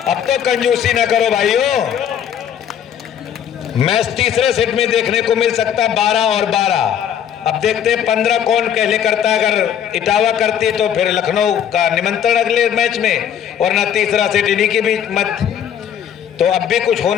अब तो कंजूसी ना करो भाइयों। मैच तीसरे सेट में देखने को मिल सकता है 12 और 12। अब देखते हैं 15 कौन पहले करता है। अगर इटावा करती तो फिर लखनऊ का निमंत्रण अगले मैच में, और ना तीसरा सेट इन्हीं के बीच मत। तो अब भी कुछ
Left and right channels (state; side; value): quieter; right; 9.2 dB